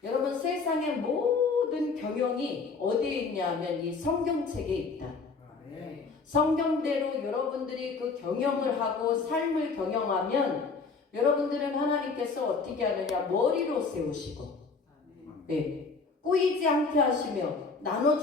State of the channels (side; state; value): right; quieter; 4.6 dB